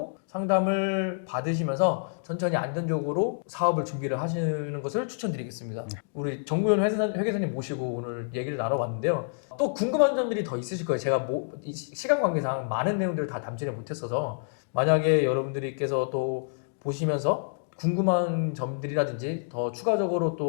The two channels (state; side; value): silent; right; digital silence